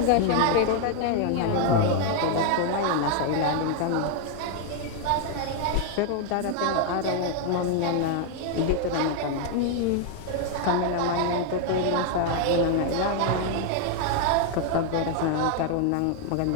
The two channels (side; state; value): both; different; correlation 0.00